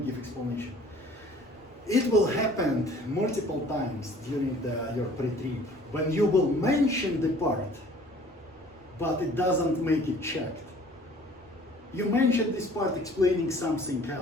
give explanation. It will happen multiple times during your pre-trip when you will mention the part, but it doesn't make it checked. You mentioned this part explaining something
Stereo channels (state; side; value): normal; both; correlation 0.51